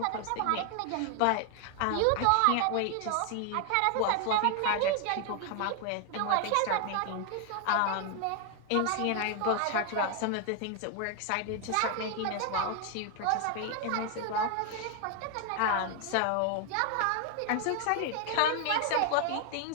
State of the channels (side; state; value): both; different; correlation 0.00